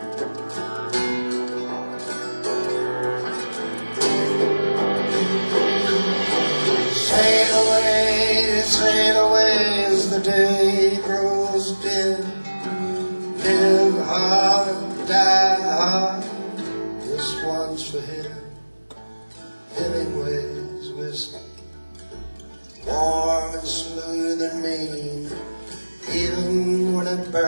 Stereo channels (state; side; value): inverted; both; correlation -1.00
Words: Sail away as the day grows dim. Live hard, die hard. This one's for him. Hemingway's whiskey, warm and smooth and mean. Even when it